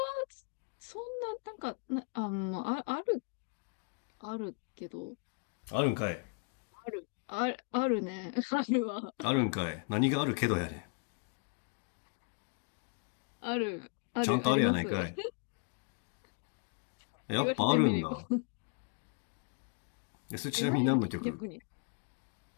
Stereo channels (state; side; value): quieter; right; 39.7 dB